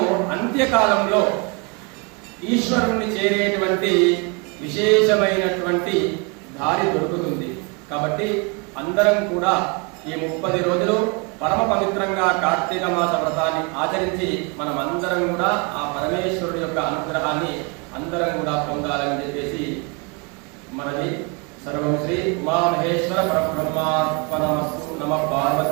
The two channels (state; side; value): quieter; left; 31.5 dB